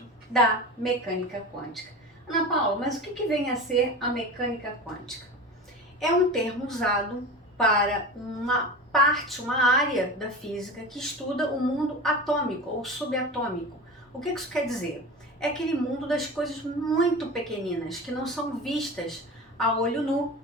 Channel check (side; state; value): both; normal; correlation 0.30